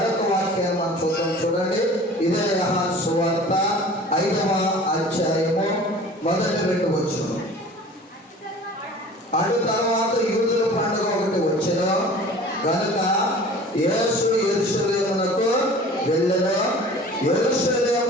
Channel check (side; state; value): both; normal; correlation 0.43